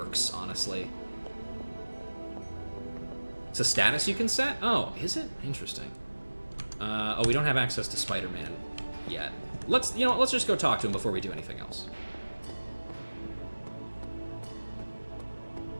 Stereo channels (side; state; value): both; inverted; correlation -1.00